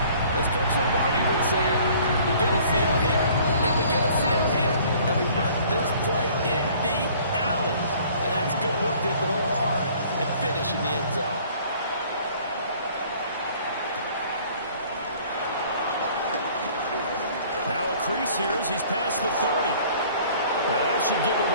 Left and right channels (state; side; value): inverted; both; correlation -0.54